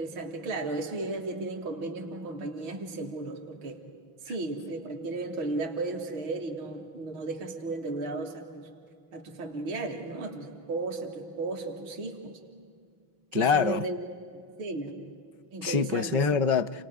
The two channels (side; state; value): left; late; 6.1 ms